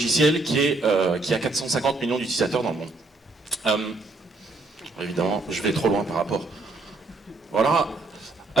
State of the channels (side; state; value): left; quieter; 3.4 dB